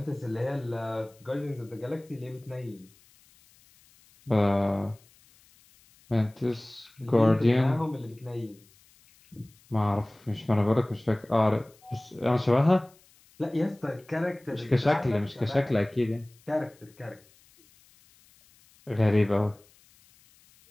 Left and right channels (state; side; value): noise; left; hiss, 30 dB below the sound